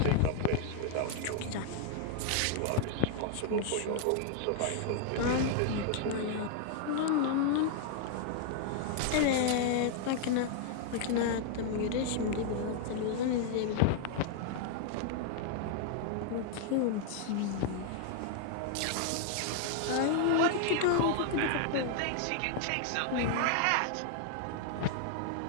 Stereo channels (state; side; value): different; both; correlation 0.00